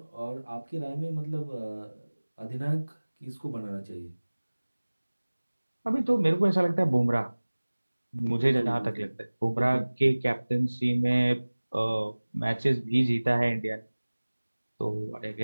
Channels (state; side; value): inverted; both; correlation -1.00